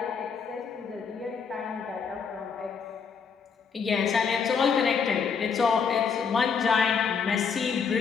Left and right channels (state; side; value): quieter; right; 6.1 dB